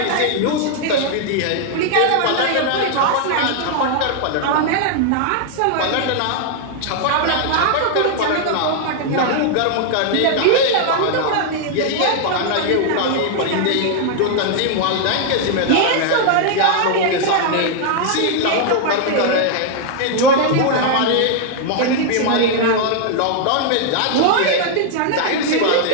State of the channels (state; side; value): different; both; correlation 0.00